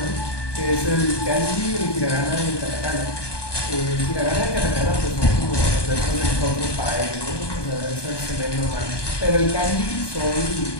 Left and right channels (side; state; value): right; late; 1.2 ms